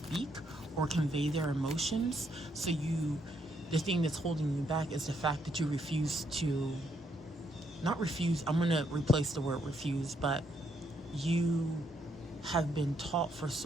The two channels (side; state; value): both; normal; correlation 0.74